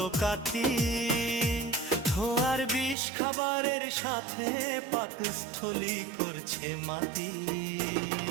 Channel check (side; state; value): left; drops out; at 3.0 s